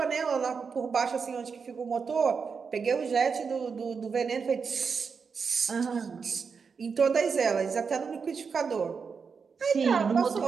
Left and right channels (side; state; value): left; quieter; 5.6 dB